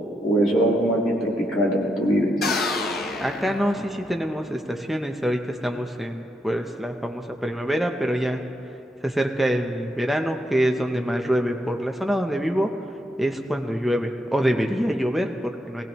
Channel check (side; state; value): both; normal; correlation 0.81